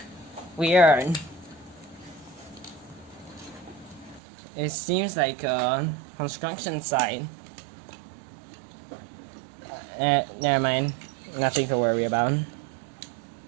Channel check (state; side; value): drops out; left; at 4.2 s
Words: Weird. It seems like a construction site. Never mind. Nothing to worry about.